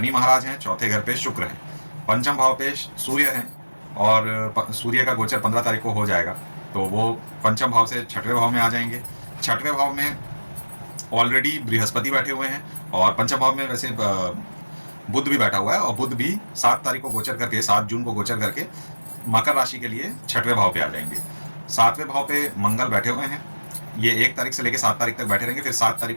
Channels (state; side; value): inverted; both; correlation -1.00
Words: महाराज हैं, चौथे घर पे शुक्र हैं, पंचम भाव पे सूर्य हैं और सूर्य का गोचर 15 तारीख को हो जाएगा, तो वो पंचम भाव से छठवें भाव में आ जाएंगे। छठवें भाव में ऑलरेडी बृहस्पति बैठे हुए हैं और पंचम भाव में वैसे बुध भी बैठा हुआ है और बुध भी 7 तारीख को गोचर करके, 7 जून को गोचर करके मकर राशि के लिए छठवें भाव पे आ जाएंगे। 7वें भाव पे मंगल बैठे हुए हैं, ये 1 तारीख से लेकर 7 तारीख तक बैठे रहेंगे। फिर 7 तारीख